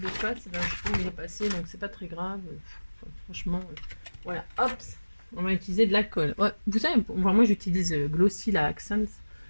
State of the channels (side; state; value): both; inverted; correlation -1.00